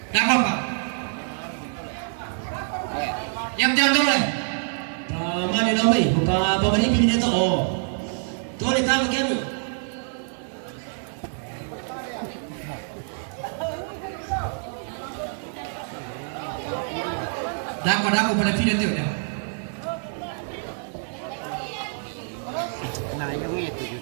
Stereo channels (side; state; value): left; silent; 61 dB below the other